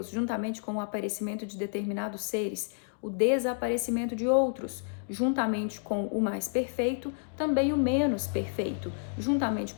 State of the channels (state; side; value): silent; right; digital silence